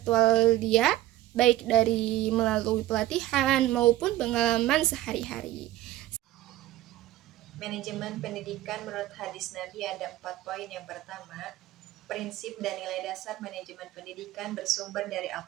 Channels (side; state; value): left; quieter; 15.2 dB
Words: dia, baik dari melalui pelatihan maupun pengalaman sehari-hari. Manajemen pendidikan menurut hadis Nabi ada 4 poin. Yang pertama, prinsip dan nilai dasar manajemen pendidikan bersumber dari